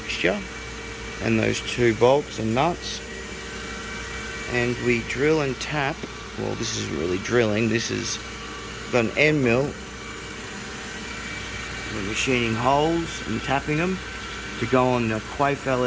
and those two bolts and nuts, and we drill and tap. Well, this isn't really drilling, this is got an end mill. We're machining holes and tapping them to go on the Quaife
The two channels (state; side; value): identical; both; correlation 1.00